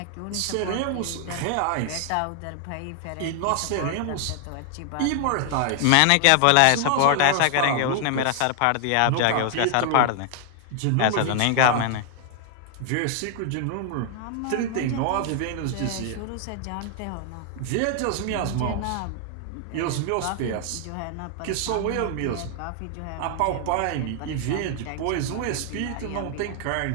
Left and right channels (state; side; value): different; both; correlation 0.00